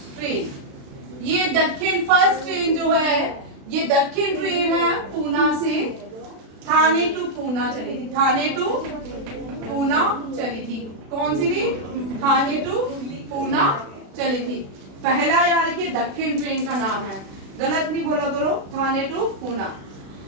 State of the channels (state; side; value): late; left; 36 ms